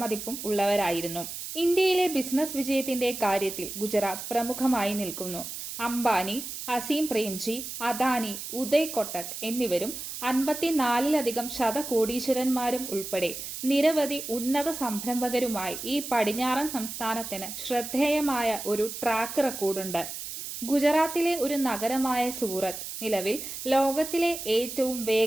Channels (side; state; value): right; noise; hiss, 8 dB below the sound